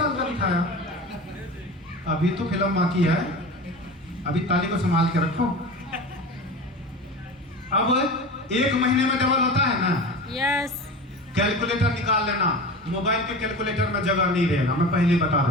का दिखाया, अभी तो फिल्म बाकी है, अभी ताली को संभाल के रखो। अब 1 महीने में डबल होता है ना? यस। कैलकुलेटर निकाल लेना, मोबाइल के कैलकुलेटर में जगह नहीं रहेगा, मैं पहले बता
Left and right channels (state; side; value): normal; both; correlation 0.32